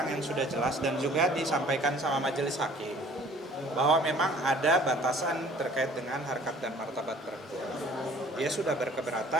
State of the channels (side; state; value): both; normal; correlation 0.53